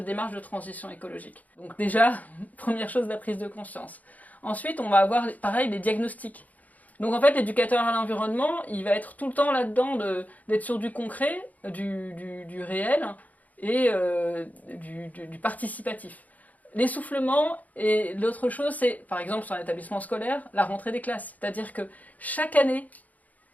démarche de transition écologique. Donc déjà, première chose, la prise de conscience. Ensuite, on va avoir, pareil, les diagnostics. Donc en fait, l'éducateur à l'environnement, il va être tout le temps là-dedans d'être sur du concret, du réel et du participatif. L'essoufflement, et l'autre chose, c'est, par exemple, sur un établissement scolaire, la rentrée des classes. C'est-à-dire que chaque année,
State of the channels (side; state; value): right; late; 0.077 ms